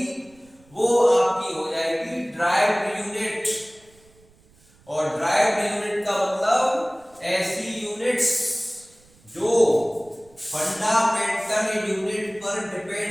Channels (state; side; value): noise; right; rumble, 30 dB below the sound